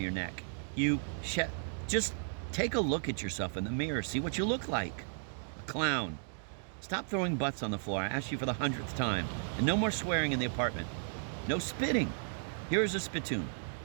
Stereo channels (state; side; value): silent; left; digital silence